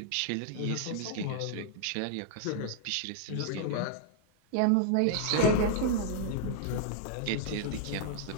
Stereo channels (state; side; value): different; both; correlation 0.00